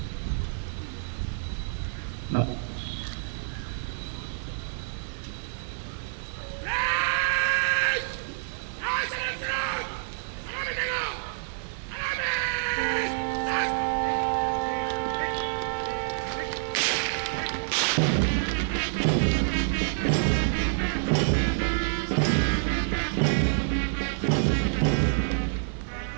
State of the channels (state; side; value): silent; left; 60 dB below the other